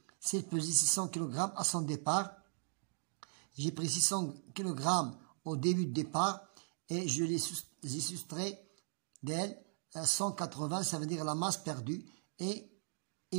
S'il pesait 600 kg à son départ, j'ai pris 600 kg au début de départ et je les ai soustrait d'elle 180, ça veut dire la masse perdue, et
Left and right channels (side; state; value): left; silent; digital silence